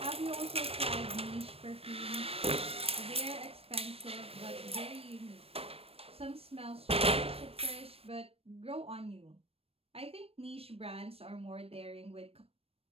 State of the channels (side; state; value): left; late; 0.28 ms